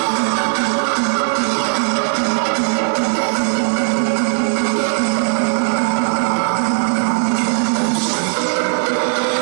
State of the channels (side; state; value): left; silent; digital silence